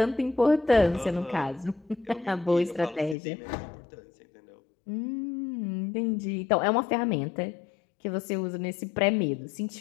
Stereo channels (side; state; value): right; drops out; at 3.2 s